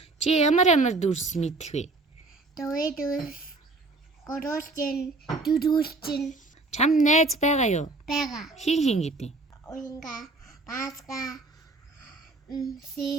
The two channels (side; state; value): left; quieter; 3.3 dB